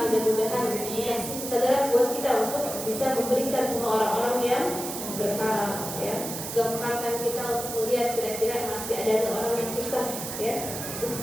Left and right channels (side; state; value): right; noise; hiss, 7 dB below the sound